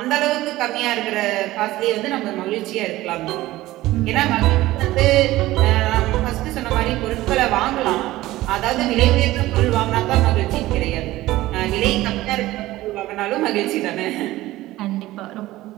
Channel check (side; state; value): left; quieter; 16.9 dB